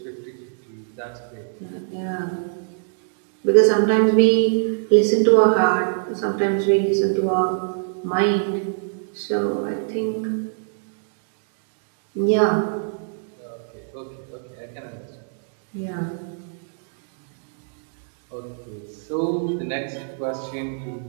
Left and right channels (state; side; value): silent; left; digital silence